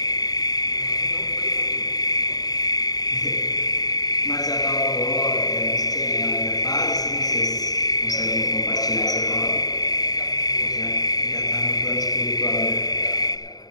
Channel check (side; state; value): right; late; 0.18 ms